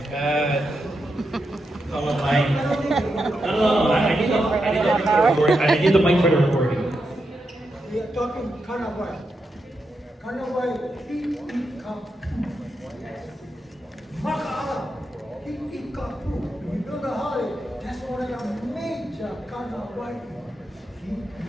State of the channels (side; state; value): both; normal; correlation 0.85